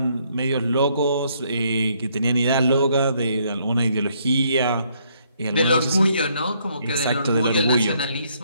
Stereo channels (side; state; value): both; inverted; correlation -0.70